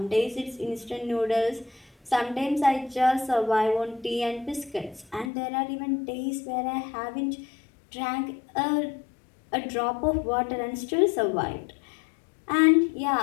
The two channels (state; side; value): drops out; right; at 5.3 s